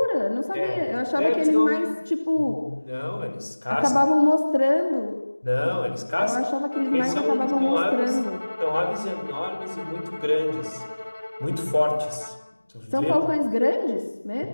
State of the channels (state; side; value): inverted; both; correlation -1.00